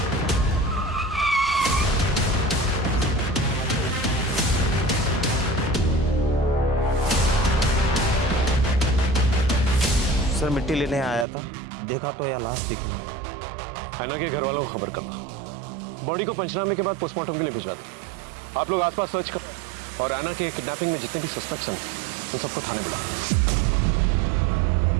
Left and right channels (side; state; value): left; drops out; at 11.2 s